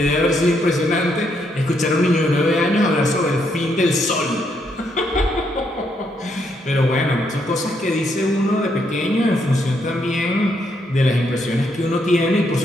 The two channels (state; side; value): normal; both; correlation 0.75